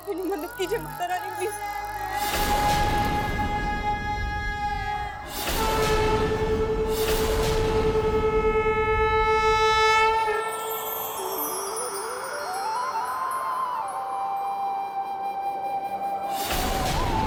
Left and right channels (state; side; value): identical; both; correlation 1.00